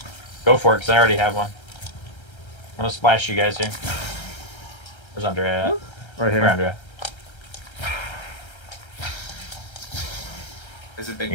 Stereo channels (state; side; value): late; right; 1.3 ms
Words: Go for it, because I already have one. I'm gonna splash you guys here. Where's Andrea at? Right Where, here. Andrea? There's a big